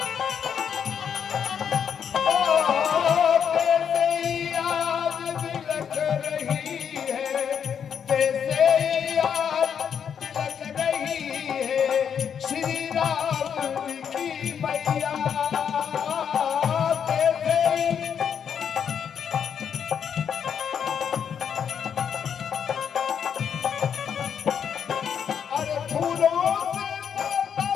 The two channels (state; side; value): quieter; right; 7.8 dB